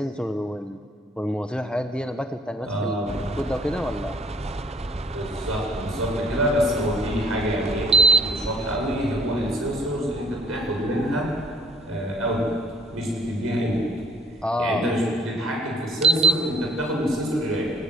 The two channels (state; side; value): normal; both; correlation 0.55